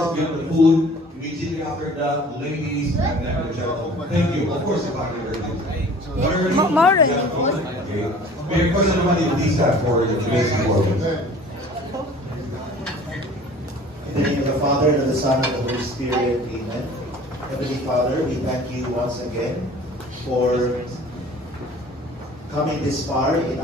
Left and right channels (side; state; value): both; normal; correlation 0.47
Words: Get the food. Immediately after that, ladies and then the gentlemen. Thank you. Of course, if I can More than okay. May I first everybody please have for the today's performance. In the name of the Father, and of the Son, and of the Holy Spirit, amen. Heavenly Father, we thank you once again for coming this far in